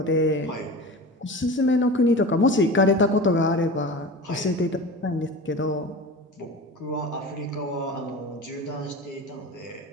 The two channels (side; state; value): both; normal; correlation 0.32